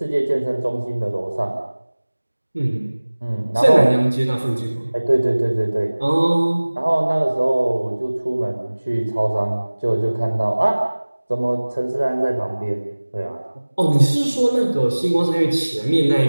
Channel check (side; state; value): both; inverted; correlation -1.00